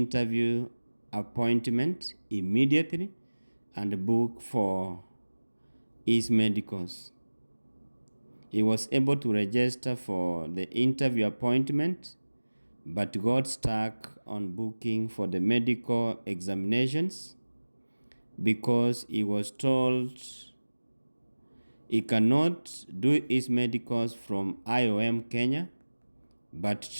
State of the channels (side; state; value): both; inverted; correlation -1.00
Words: appointment immediately and book for his medicals. He was able to register for the interview appointment but got stuck on booking for the medical examinations because he was told he cannot do his medicals from IOM Kenya, but